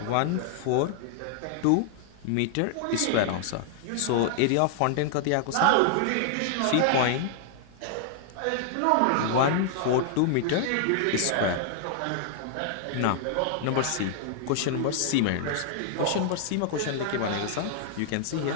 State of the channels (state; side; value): different; both; correlation -0.01